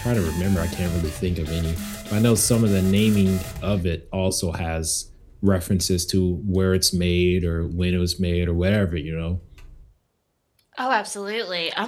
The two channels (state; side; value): identical; both; correlation 1.00